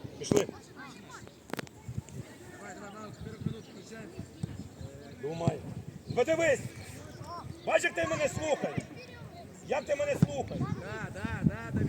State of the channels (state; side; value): identical; both; correlation 1.00